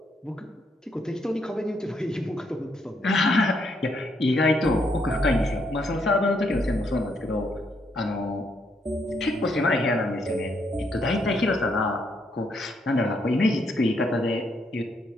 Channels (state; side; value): normal; both; correlation 0.75